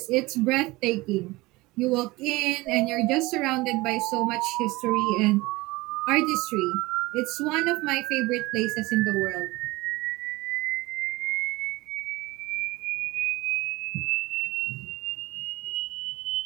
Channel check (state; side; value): quieter; left; 21.4 dB